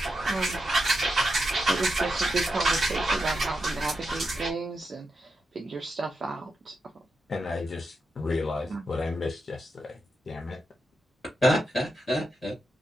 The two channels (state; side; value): normal; both; correlation 0.86